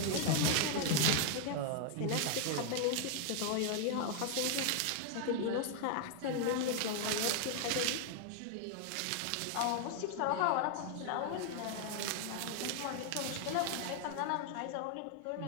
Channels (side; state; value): both; different; correlation 0.00